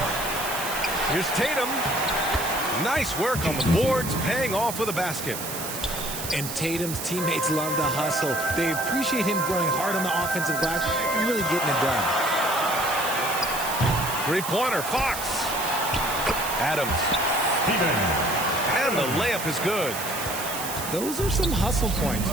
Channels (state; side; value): noise; right; hiss, 7 dB below the sound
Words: Here's Tatum. Nice work on the boards, paying off with a basket. And Tatum's teammates love the hustle. They appreciate him going hard on the offensive glass and really getting it done. Three-pointer, Fox. Adams. And the layup is good. Those are some hustle points,